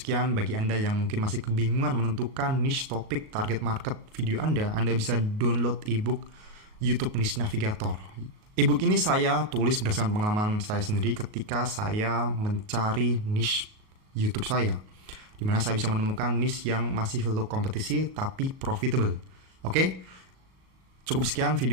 Bagi Anda yang mungkin masih kebingungan menentukan niche topik target market video Anda bisa download ebook YouTube Niche Navigator. Ebook ini saya tulis berdasarkan pengalaman saya sendiri ketika saya mencari niche YouTube saya, dimana saya bisa menemukan niche yang masih low kompetisi tapi profitable. Oke? Cukup sekian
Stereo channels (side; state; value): left; late; 38 ms